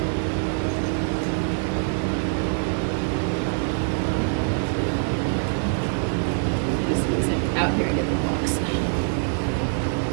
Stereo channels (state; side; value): silent; left; 62 dB below the other